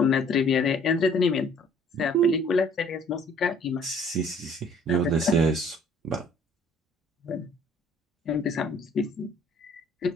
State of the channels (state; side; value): normal; both; correlation 0.56